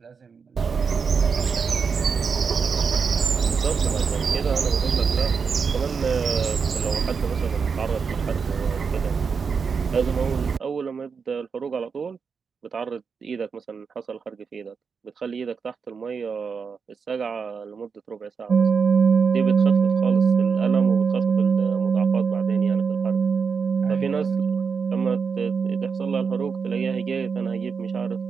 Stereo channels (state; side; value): quieter; left; 5.7 dB